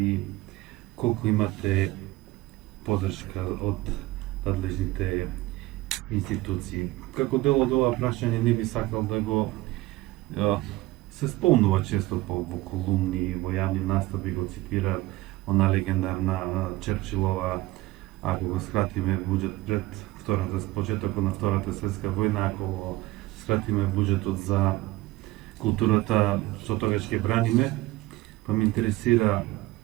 колку имате поддршка од надлежните институции. Како дел од ова прашање не би сакал да го се спомнува често во колумни, во јавни настави го цитира она легендарна Черчилова: ако го скратиме буџет пред почетокот на Втората светска војна, ако го скратиме буџетот за културата, што тогаш ќе браниме, па ме интересира,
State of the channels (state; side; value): quieter; left; 18.6 dB